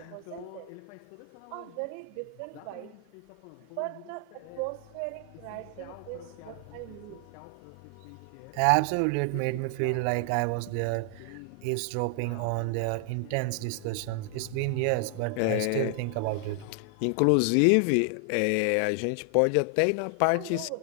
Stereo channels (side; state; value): both; different; correlation 0.00